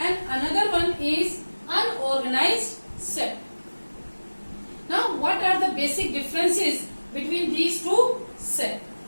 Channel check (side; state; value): both; inverted; correlation -1.00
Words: another one is unorganized sector. Now, what are the basic differences between these two sectors?